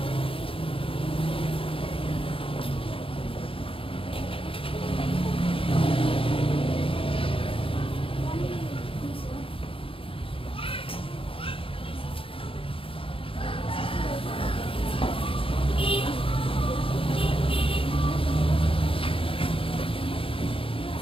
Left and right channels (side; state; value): right; late; 0.26 ms